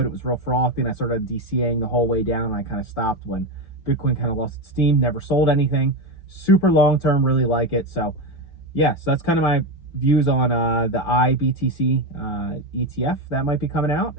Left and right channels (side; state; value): right; late; 5.9 ms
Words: it was real frothy and I started DCAing the whole way down. And I kind of stopped when Bitcoin kind of lost its steam, never sold anything. Super long term, really like it. So yeah, so that's kind of my views on the IBTC ETF that might be coming out.